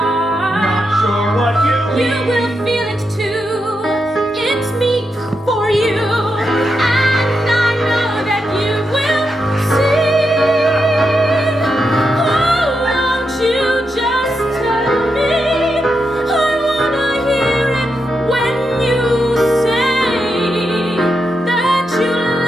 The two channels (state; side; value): normal; both; correlation 0.85